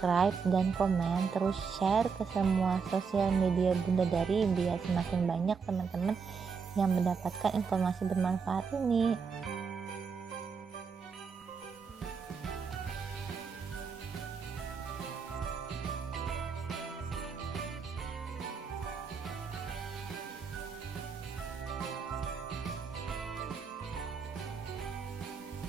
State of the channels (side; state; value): left; quieter; 5.7 dB